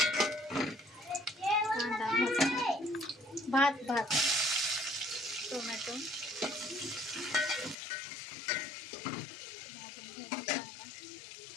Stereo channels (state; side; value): drops out; right; at 7.8 s